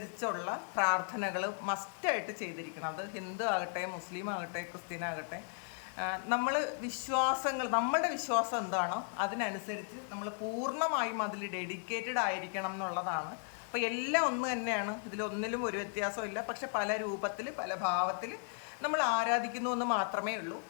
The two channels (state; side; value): silent; right; 54 dB below the other